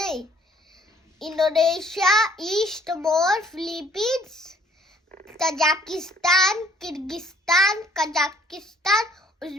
Indonesia, East Timor, Philippines, Tajikistan, Kyrgyzstan, Kazakhstan,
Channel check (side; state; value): both; normal; correlation 0.60